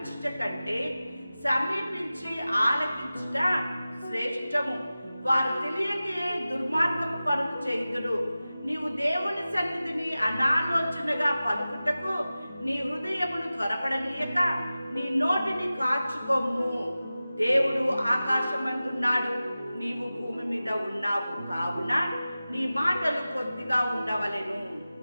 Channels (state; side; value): inverted; both; correlation -0.96